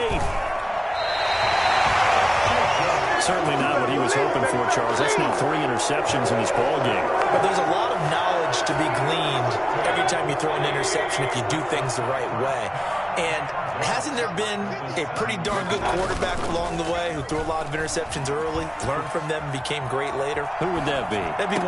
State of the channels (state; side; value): identical; both; correlation 1.00